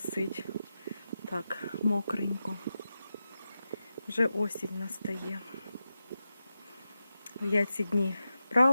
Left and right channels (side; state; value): both; inverted; correlation -0.91